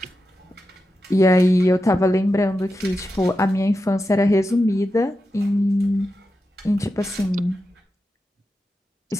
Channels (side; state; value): both; normal; correlation 0.90